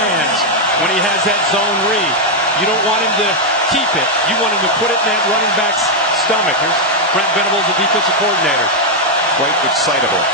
when he has that zone read. You don't want him to keep it. You want him to put it in that running back's stomach. There's Brent Venables, the defensive coordinator. Quite excitable.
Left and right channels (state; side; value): normal; both; correlation 0.00